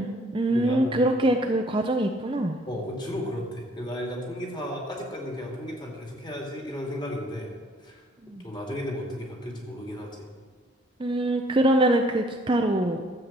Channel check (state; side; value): normal; both; correlation 0.60